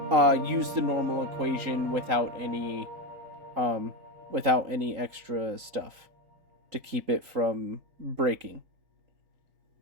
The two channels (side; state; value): left; late; 3.9 ms